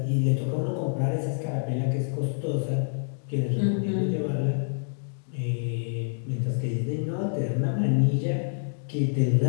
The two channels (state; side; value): silent; right; digital silence